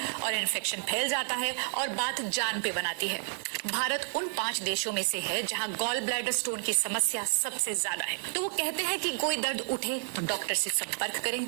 और इन्फेक्शन फैल जाता है और बात जान पे बनाती है। भारत उन 5 देशों में से है जहां गॉल ब्लैडर स्टोन की समस्या सबसे ज्यादा है। तो वो कहते हैं कि कोई दर्द उठे तो डॉक्टर से संपर्क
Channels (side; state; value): left; silent; 57 dB below the other